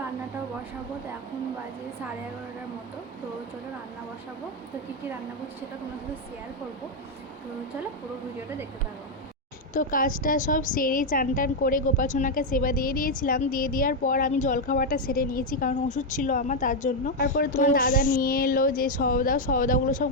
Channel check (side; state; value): both; normal; correlation 0.03